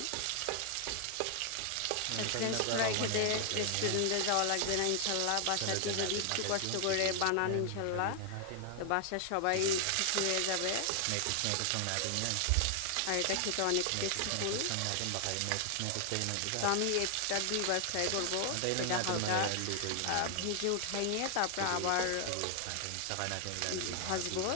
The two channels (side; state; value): both; different; correlation 0.00